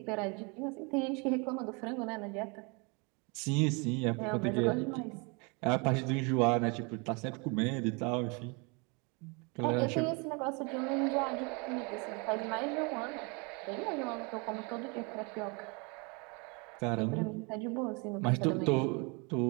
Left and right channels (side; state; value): left; quieter; 31.3 dB